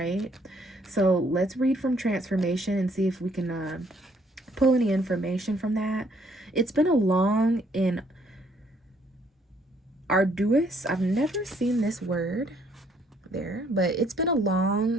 So let's read from transformation and see if we can pull any information from that. It's been a long and arduous, I've never seen this word there, but it's been a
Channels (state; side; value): normal; both; correlation 0.66